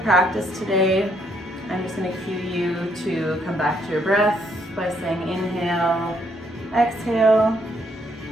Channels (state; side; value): normal; both; correlation 0.71